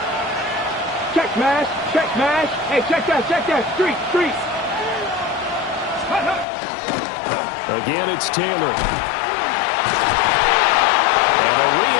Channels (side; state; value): right; drops out; at 6.5 s